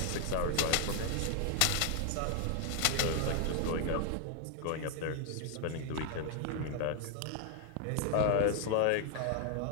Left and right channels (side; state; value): both; different; correlation 0.00